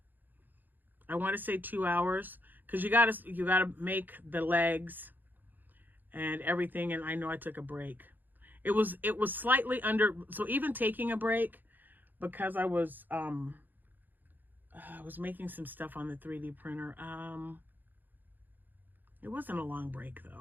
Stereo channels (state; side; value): late; left; 0.087 ms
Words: I want to say 2 hours. Because you gotta make the legs and everything. And I know I took a break. It was slightly under, so even taking a break, because I was making some stuff on the 3D printer. It wasn't a long break